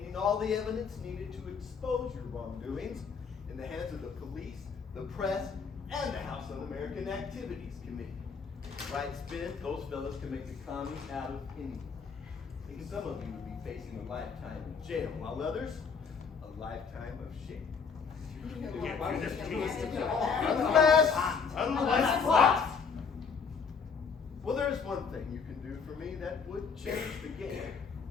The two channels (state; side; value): quieter; right; 5.7 dB